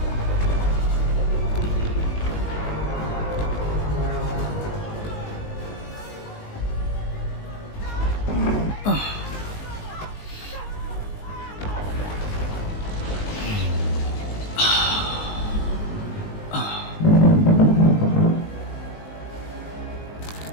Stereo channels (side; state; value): right; late; 19 ms